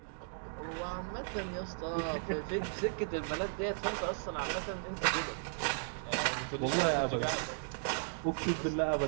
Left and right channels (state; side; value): silent; left; digital silence